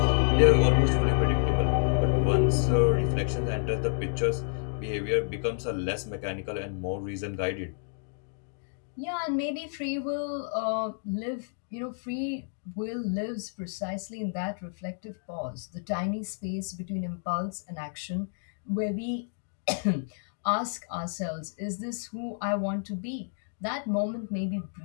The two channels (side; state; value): right; silent; digital silence